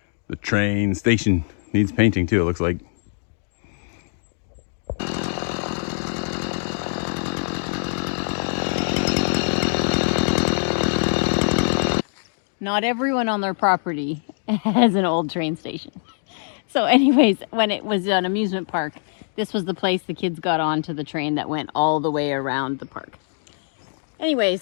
The train station needs painting too, it looks like. Not everyone on their property has an old train station. So anyways, when it was an amusement park, this was the place the kids got onto the train that went all the way around the park.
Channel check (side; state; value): right; silent; digital silence